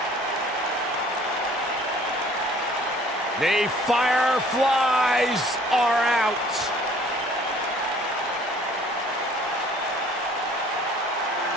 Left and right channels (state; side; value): normal; both; correlation 0.54